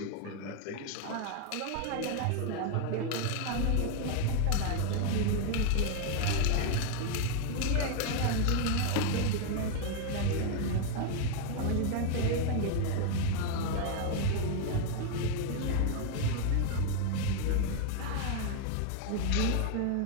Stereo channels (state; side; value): different; both; correlation 0.00